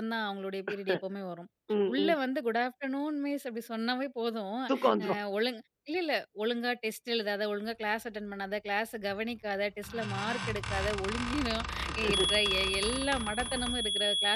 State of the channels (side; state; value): both; identical; correlation 1.00